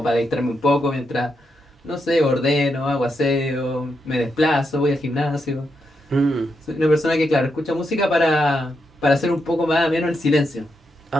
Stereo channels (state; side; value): normal; both; correlation 0.82